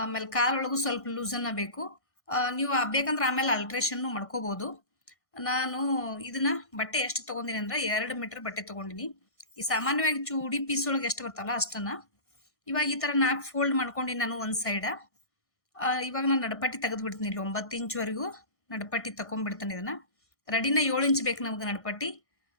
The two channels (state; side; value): late; right; 1.6 ms